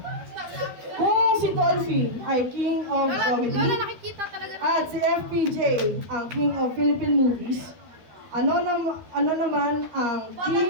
Kung si Dolphy ay King of Comedy at si FPJ ang King of Philippine Movies, ano naman ang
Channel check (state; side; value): late; left; 13 ms